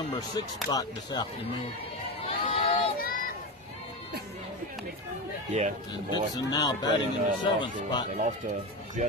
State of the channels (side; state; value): both; normal; correlation 0.19